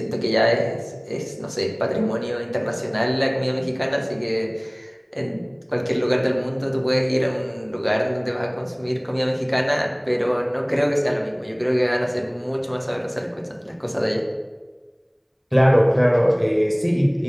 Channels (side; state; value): both; identical; correlation 1.00